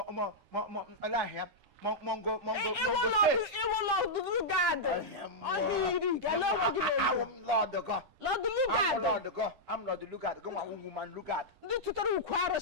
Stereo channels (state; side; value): late; left; 10 ms